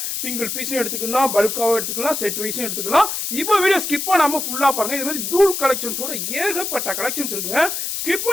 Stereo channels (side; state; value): left; noise; hiss, 3 dB below the sound